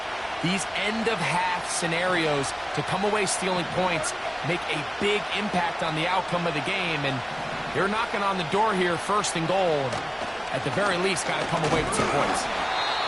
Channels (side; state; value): both; identical; correlation 1.00